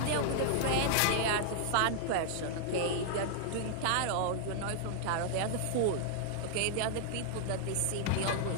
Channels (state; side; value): different; both; correlation 0.00